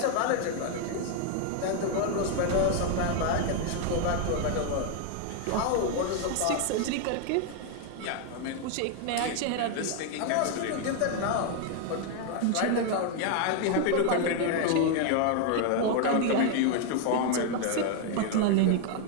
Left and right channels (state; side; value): different; both; correlation 0.00